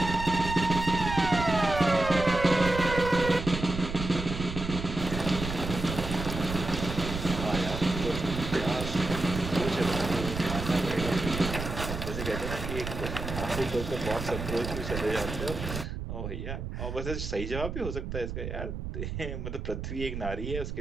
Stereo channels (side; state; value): right; noise; rumble, 6 dB below the sound